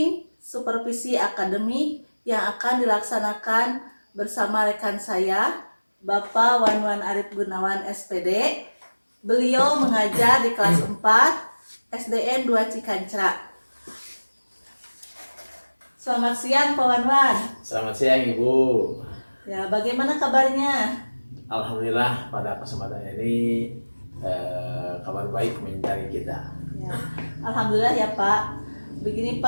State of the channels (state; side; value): inverted; both; correlation -1.00